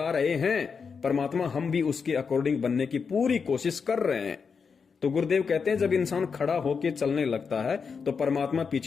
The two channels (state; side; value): quieter; right; 5.7 dB